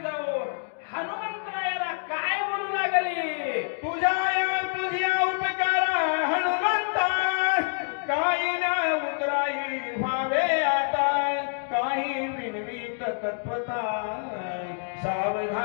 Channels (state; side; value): silent; right; digital silence